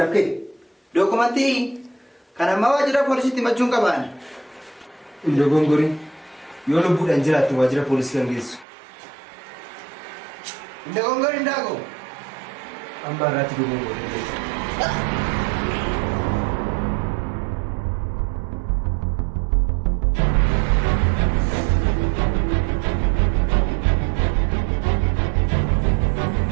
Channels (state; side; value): drops out; left; at 8.7 s